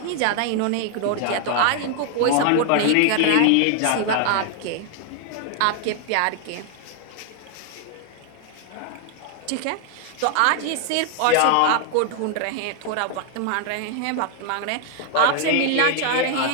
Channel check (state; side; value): different; both; correlation 0.00